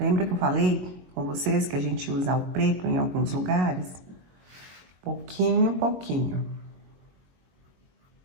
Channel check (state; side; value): late; left; 22 ms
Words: que eu falei com vocês que a gente usa o preto em alguns lugares? Pouquinho, pouquinho.